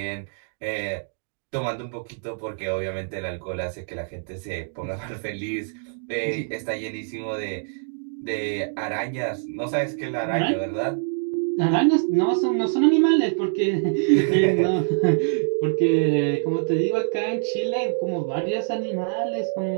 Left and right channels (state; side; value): silent; left; digital silence